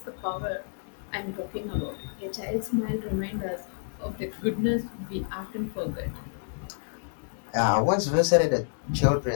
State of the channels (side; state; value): right; silent; digital silence